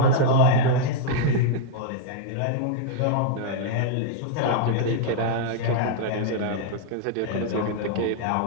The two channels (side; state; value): both; different; correlation -0.01